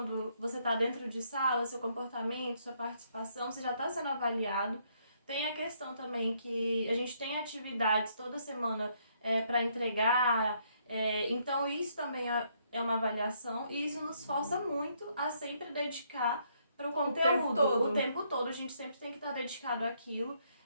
você está dentro de sala, seu comportamento, sua participação, você já está sendo avaliado. Tem a questão também que a gente tem atividades toda semana para entregar, então isso também é uma avaliação e isso nos força muito a sempre dedicar para o conteúdo. O tempo todo, a gente sempre tem que estar dedicado àquilo.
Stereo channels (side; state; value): both; inverted; correlation -0.71